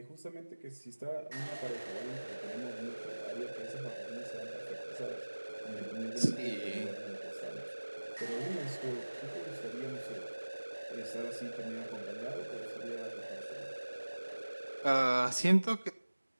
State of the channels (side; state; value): both; inverted; correlation -1.00